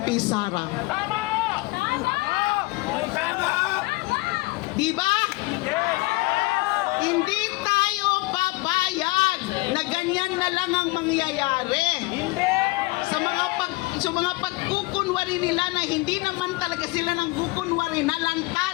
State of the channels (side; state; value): right; quieter; 23.3 dB